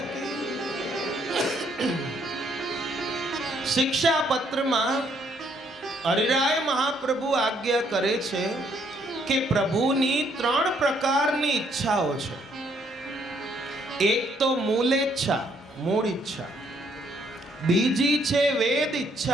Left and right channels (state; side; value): normal; both; correlation 0.69